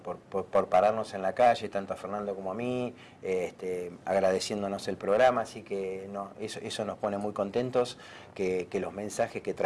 pararnos en la calle, tanto a Fernando como a mí, agradeciéndonos el programa, así que eso nos pone muy contentos, que los mensajes que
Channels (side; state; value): both; identical; correlation 1.00